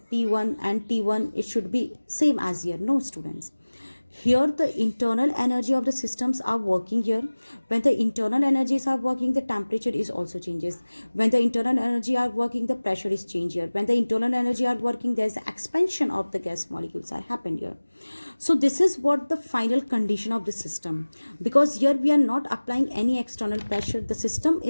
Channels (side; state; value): both; inverted; correlation -1.00